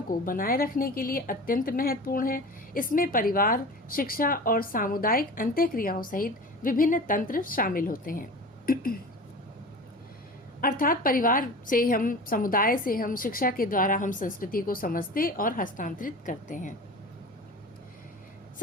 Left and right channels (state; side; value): normal; both; correlation 0.35